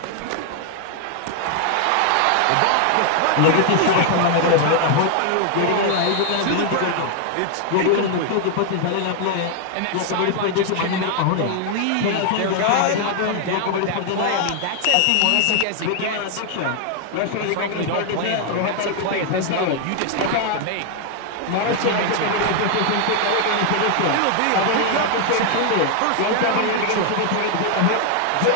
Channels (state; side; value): different; both; correlation 0.00